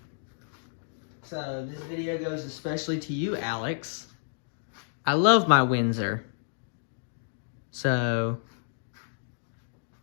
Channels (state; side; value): silent; right; digital silence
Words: So this video goes especially to you, Alex. I love my Windsor. So,